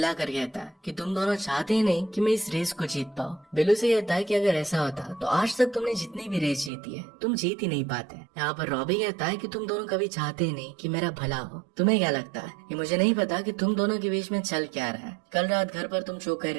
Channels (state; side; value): drops out; left; at 6.7 s